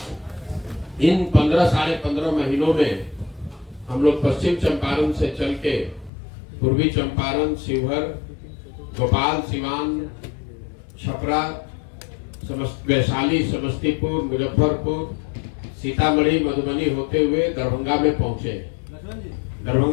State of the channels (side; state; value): right; drops out; at 6.1 s